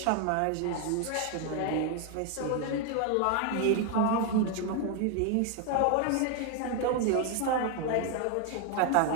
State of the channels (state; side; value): different; both; correlation 0.01